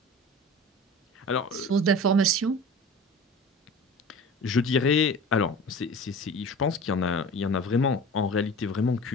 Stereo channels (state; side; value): normal; both; correlation 0.38